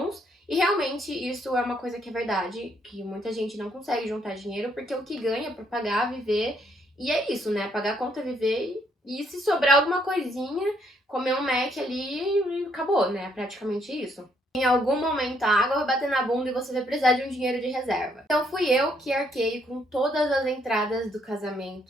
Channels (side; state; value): both; normal; correlation 0.71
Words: E realmente isso é uma coisa que é verdade, que muita gente não consegue juntar dinheiro, porque o que ganha para pagar, viver, e é isso, né? Pagar a conta, viver, e se sobrar alguma coisinha, comer um Mac ali e acabou, né? Praticamente isso. Em algum momento a água vai bater na bunda e você vai precisar de um dinheiro de reserva. Então fui eu que arquei com todas as entradas do